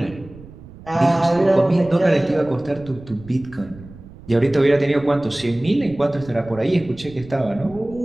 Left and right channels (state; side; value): noise; right; rumble, 19 dB below the sound